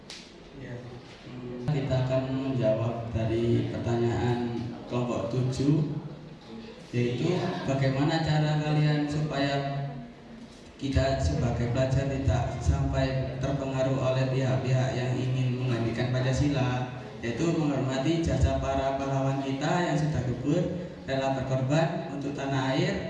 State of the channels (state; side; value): identical; both; correlation 1.00